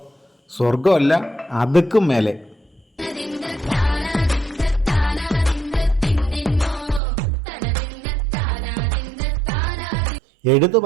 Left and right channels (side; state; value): left; drops out; at 7.0 s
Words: സ്വർഗമല്ല അതുക്കും മേലെ. എടുത്തു